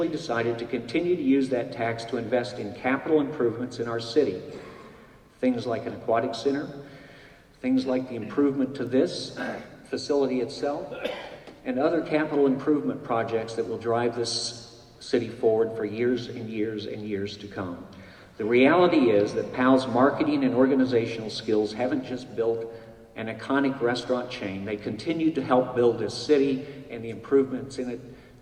decided to continue to use that tax to invest in capital improvements in our city. Things like an aquatic center, things like the improvement to this facility itself, and other capital improvement projects that will drive this city forward for years and years and years to come. The reality is that Pal's marketing and organizational skills haven't just built an iconic restaurant chain, they continue to help build this city and the improvements in it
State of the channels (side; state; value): both; identical; correlation 1.00